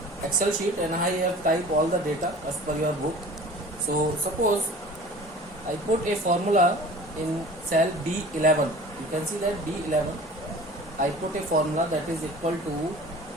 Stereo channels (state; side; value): normal; both; correlation 0.43